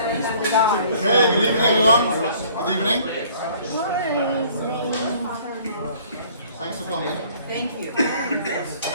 good evening, everyone. Good evening. Thanks for coming. Thank you.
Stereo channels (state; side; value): inverted; both; correlation -0.55